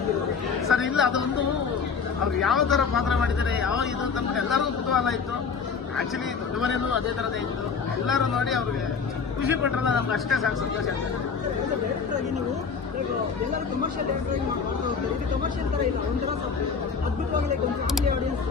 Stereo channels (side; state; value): right; quieter; 5.7 dB